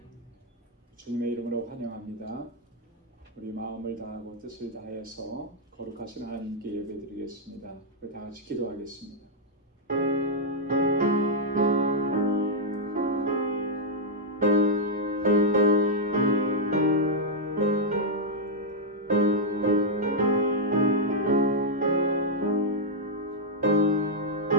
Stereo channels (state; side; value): normal; both; correlation -0.05